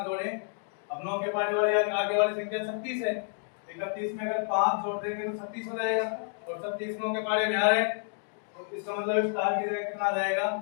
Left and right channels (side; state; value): right; silent; 55 dB below the other